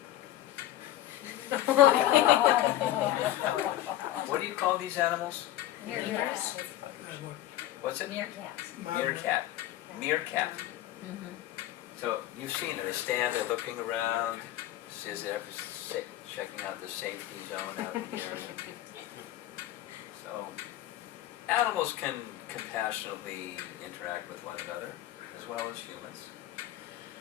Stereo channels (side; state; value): right; quieter; 13.7 dB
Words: What do you call these animals? Meerkats. What's it? Meerkats. Meerkat. Meerkat. Mm-hmm. So you've seen it. They stand, they're looking around, says they're checking out the safety zone out in the area. So animals can compassionately interact with one another, as well as humans.